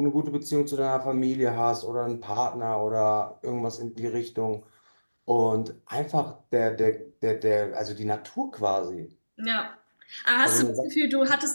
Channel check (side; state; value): both; inverted; correlation -1.00